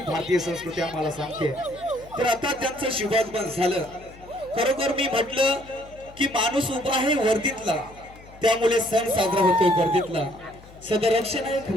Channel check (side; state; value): left; noise; hum, 21 dB below the sound